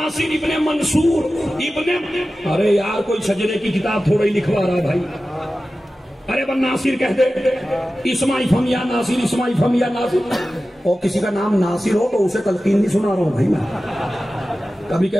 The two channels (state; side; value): normal; both; correlation 0.95